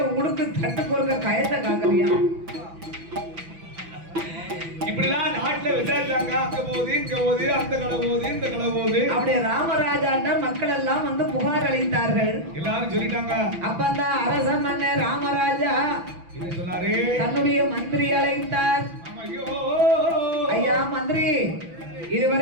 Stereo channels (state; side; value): late; left; 6.0 ms